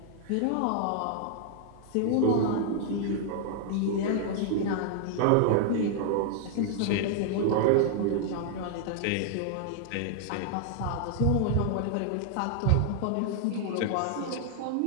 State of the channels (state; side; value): different; both; correlation 0.00